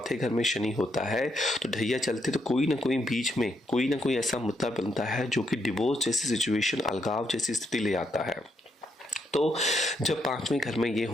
घर में शनि होता है तो ढैया चलते तो कोई ना कोई बीच में कोई ना कोई ऐसा मुद्दा बनता है जो कि डिवोर्स जैसी सिचुएशन, अलगाव जैसी स्थिति ले आता है। तो जब पांचवें घर में ये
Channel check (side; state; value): both; normal; correlation 0.78